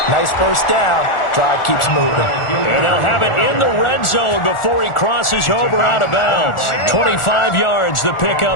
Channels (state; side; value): late; right; 1.4 ms